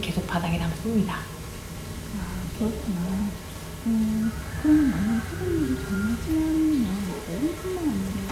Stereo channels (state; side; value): identical; both; correlation 1.00